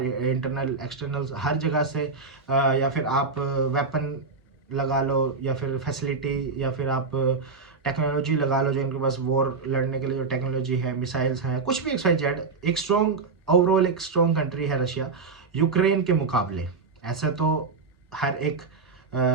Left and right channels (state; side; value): quieter; left; 4.5 dB